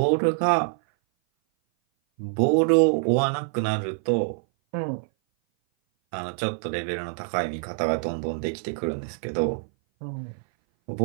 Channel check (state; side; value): silent; left; 57 dB below the other